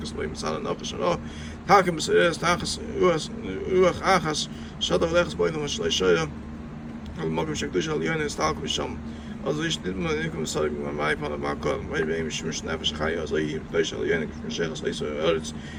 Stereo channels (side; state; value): both; identical; correlation 1.00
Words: Lady Masala Nakas and all. Takim Seres Takas Uach Achas Shadav Lechs Boy no Shayim. الموقف شكلش اليوم يستعلق بالشام أزيش نتمنى إنكم صاروا معي فانا معكم ما يبين مش نافش خير زي ليش اليوم كيف شيخ ليس أرز